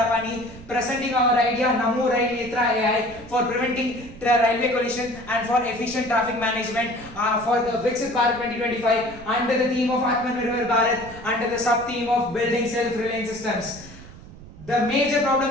presenting our idea Namo Rail Netra AI for preventing railway collision and for efficient traffic management for the Viksit Bharat 2025 under the theme of Atmanirbhar Bharat under the sub theme of building self-reliant systems. The major problem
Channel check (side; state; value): right; noise; rumble, 18 dB below the sound